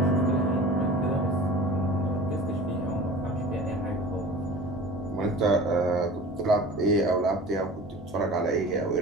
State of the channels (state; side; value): normal; both; correlation 0.40